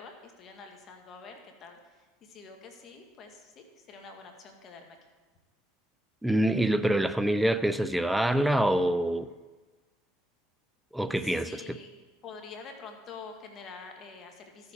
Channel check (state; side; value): normal; both; correlation 0.88